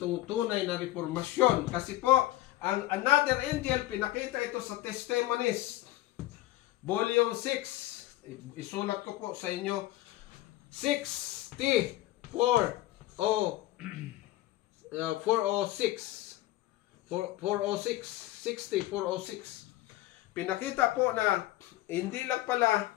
tunay na reformasyon. Kasi po, ang another angel, pinakita ito sa Testimonies, Volume 6. Isulat ko po sa inyo, 406. Pinakita po na hindi lang pala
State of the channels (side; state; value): right; quieter; 16.1 dB